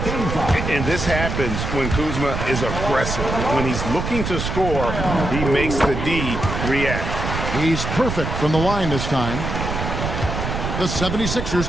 And this happens when Kuzma is aggressive. When he's looking to score, he makes the D react. He's perfect from the line this time. The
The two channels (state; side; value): noise; right; rumble, 3 dB below the sound